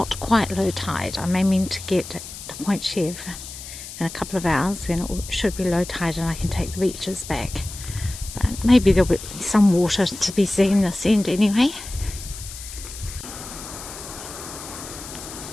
quite low tide. I'm aiming to get to Point Chev in a couple of hours, then it should be low tide and I can take the beaches back. But maybe there'll be some water to be seen this end anyway.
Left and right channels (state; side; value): noise; left; hiss, 12 dB below the sound